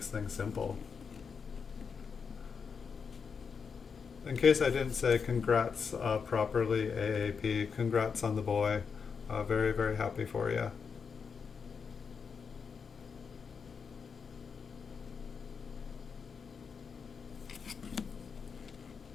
things simple. in case I didn't say congrats properly, AAP, congrats on the boy. Very, very happy for you.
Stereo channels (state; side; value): quieter; right; 5.9 dB